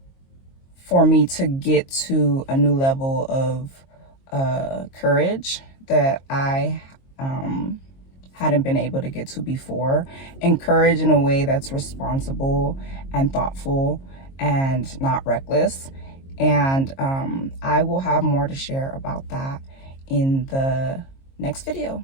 me to get to a new level of courage that I hadn't been able to get to before. And courage in a way that's responsible and thoughtful and not reckless. And I will have more to share about that in the next video.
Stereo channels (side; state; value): right; late; 22 ms